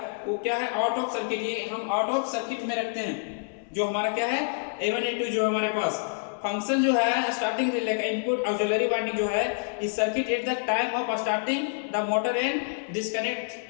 वो क्या है, आउट ऑफ सर्किट, ये हम आउट ऑफ सर्किट में रखते हैं। जो हमारा क्या है A1 A2 जो हमारे पास फंक्शन जो है स्टार्टिंग रिले का इनपुट ऑक्सिलरी वाइंडिंग जो है इस circuit at the time of starting the motor and disconnect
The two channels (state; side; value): silent; right; 60 dB below the other